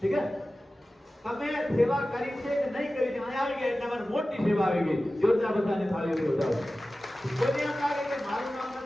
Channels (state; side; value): normal; both; correlation 0.95